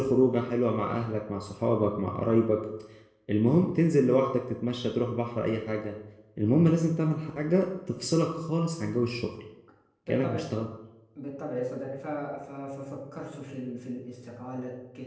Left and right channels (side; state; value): both; identical; correlation 1.00